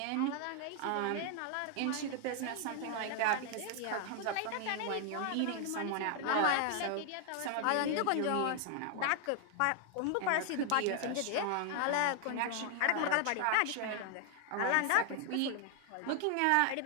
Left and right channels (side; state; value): both; different; correlation 0.00